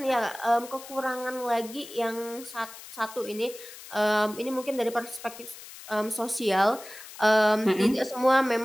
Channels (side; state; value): left; noise; hiss, 15 dB below the sound